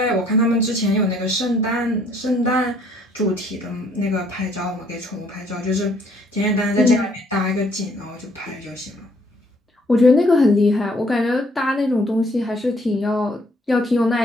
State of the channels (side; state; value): both; normal; correlation 0.64